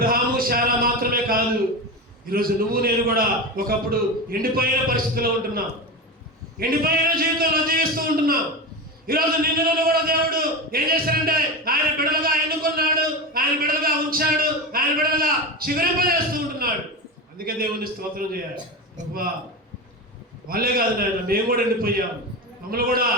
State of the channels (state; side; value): normal; both; correlation 0.22